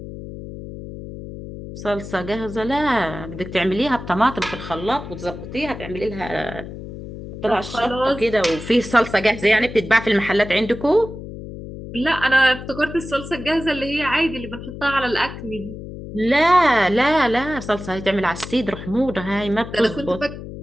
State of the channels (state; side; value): noise; left; hum, 11 dB below the sound